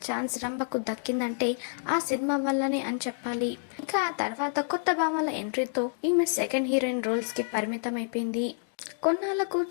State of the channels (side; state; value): right; silent; digital silence